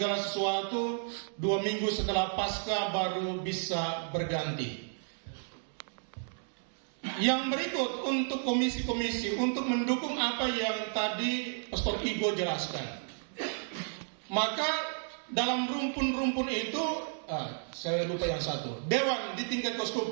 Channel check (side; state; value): left; silent; digital silence